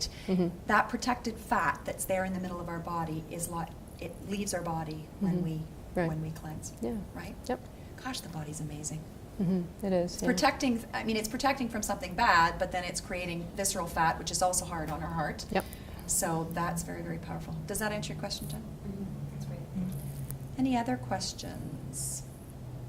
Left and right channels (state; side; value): identical; both; correlation 1.00